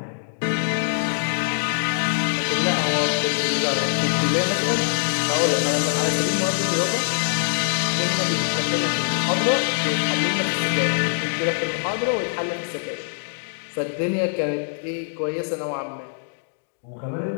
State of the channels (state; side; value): silent; right; digital silence